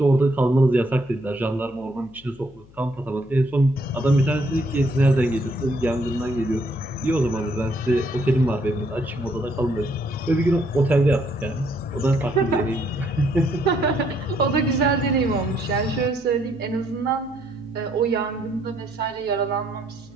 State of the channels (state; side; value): noise; left; hum, 24 dB below the sound